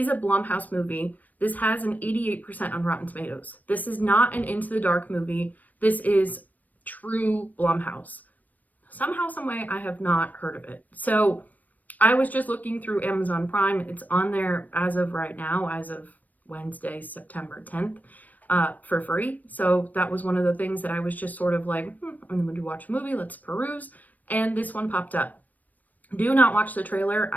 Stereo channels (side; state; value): right; late; 0.080 ms